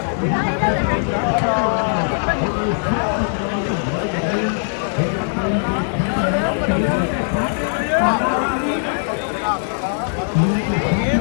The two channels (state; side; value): silent; right; 66 dB below the other